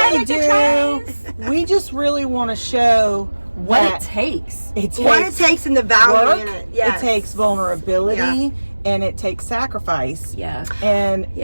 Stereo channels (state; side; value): inverted; both; correlation -1.00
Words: we do. We just really want to show What it takes. What it takes and the value in it. It takes vulnerability and it takes sacrifice. Yeah.